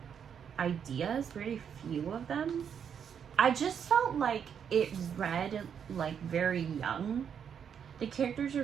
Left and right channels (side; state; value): left; quieter; 7.8 dB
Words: ideas, very few of them. I just felt like it read like very young. The characters